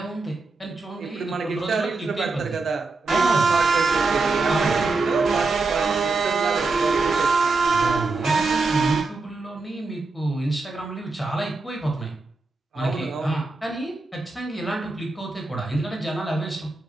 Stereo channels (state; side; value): quieter; left; 3.6 dB